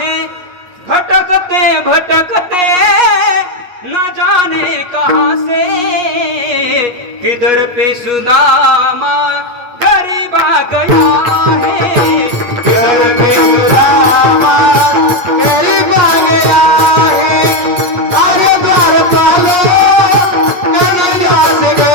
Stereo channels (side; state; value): left; late; 8.3 ms